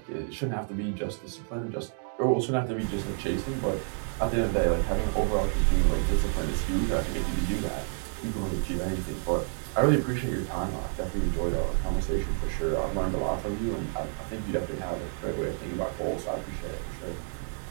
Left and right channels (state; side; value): silent; left; 58 dB below the other